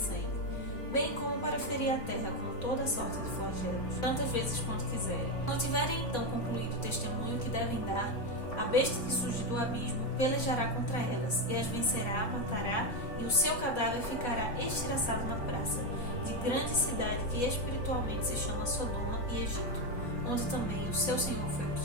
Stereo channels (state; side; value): late; right; 4.1 ms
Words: bem como para ferir a terra com toda sorte de flagelos, tantas vezes quanto quiserem. Não tiverem então concluído o testemunho que devem dar, a besta que surge do abismo pelejará contra elas, e as vencerá, matará, e o seu cadáver ficará estilhaçado na praça, de grande cidade que espiritualmente se chama Sodoma e Egito, onde também o seu Senhor foi